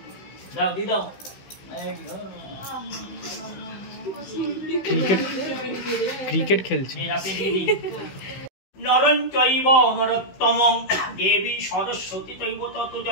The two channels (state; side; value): late; right; 16 ms